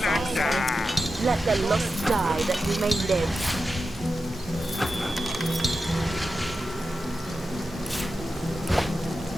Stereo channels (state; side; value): normal; both; correlation 0.91